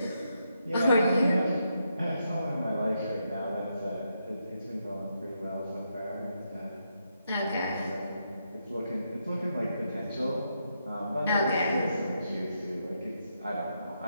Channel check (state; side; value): inverted; both; correlation -0.81